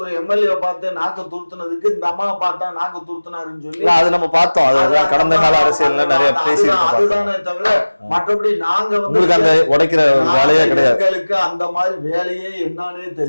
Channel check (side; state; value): both; inverted; correlation -1.00